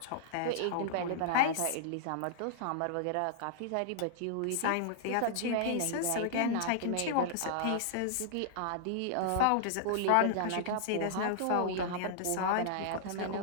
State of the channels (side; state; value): both; different; correlation -0.01